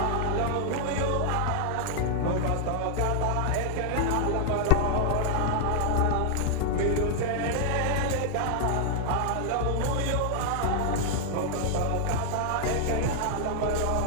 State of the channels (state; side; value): different; both; correlation 0.00